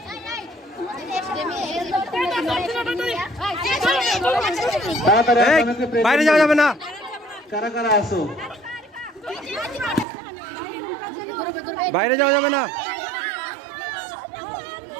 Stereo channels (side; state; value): left; drops out; at 10.1 s